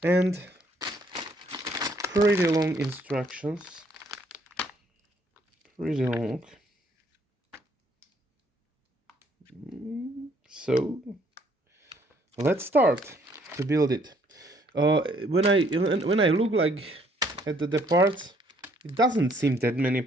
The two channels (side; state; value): both; normal; correlation 0.65